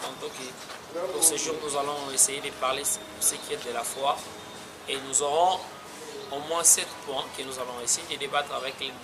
que pour ce jour, nous allons essayer de parler de ce qui est de la foi. Et nous aurons au moins 7 points que nous allons essayer de débattre avec le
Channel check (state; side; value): identical; both; correlation 1.00